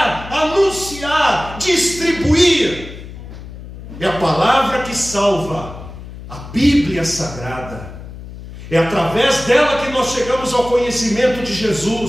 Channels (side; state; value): left; noise; hum, 13 dB below the sound